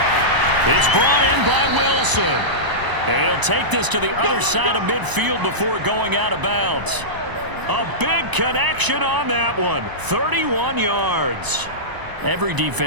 It's brought in by Wilson. And he'll take this to the other side of midfield before going out of bounds. A big connection on that one. 31 yards. Every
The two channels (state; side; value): late; left; 1.0 ms